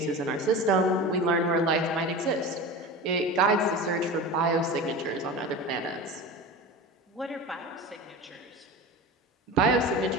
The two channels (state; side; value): normal; both; correlation 0.30